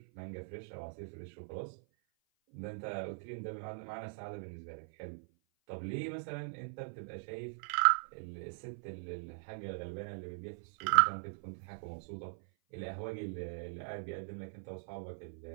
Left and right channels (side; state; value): left; silent; 51 dB below the other